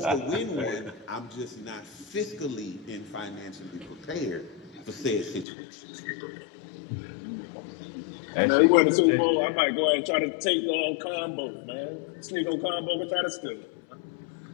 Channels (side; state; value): right; drops out; at 5.5 s